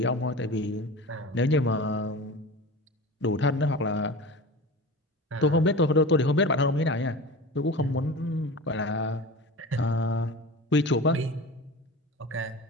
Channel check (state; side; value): normal; both; correlation 0.33